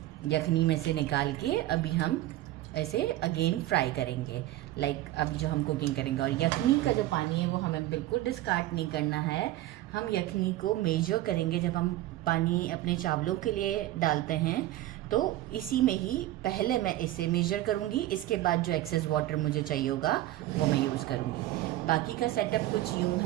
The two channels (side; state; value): left; quieter; 15.4 dB